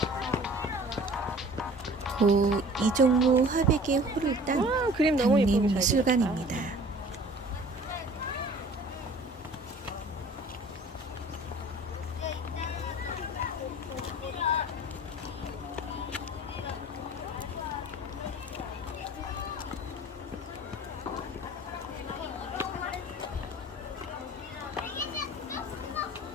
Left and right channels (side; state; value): both; normal; correlation 0.47